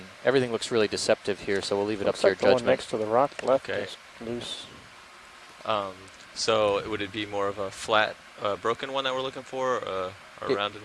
everything looks really deceptive here, so we'll leave it up to your Looks like the one judgment. next to the rock left Okay. is loose. So would it be more of a flat, broken one that we're looking for, or a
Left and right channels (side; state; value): both; identical; correlation 1.00